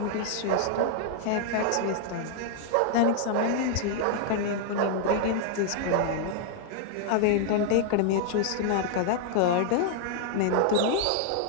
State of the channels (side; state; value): both; different; correlation -0.01